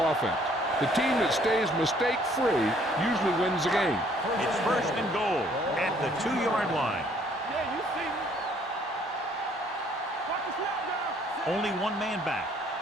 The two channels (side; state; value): both; normal; correlation 0.62